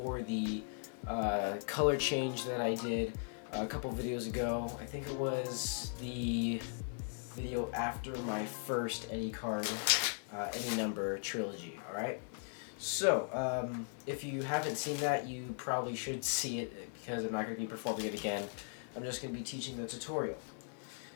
the color change that I did a couple videos ago. I think it was the video after my first Any Card, Any Number trilogy, alright? So, if you haven't seen that, you probably should see it because I'm not going to be performing it again. I'm just going to be teaching the tutorial.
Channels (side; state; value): right; silent; 52 dB below the other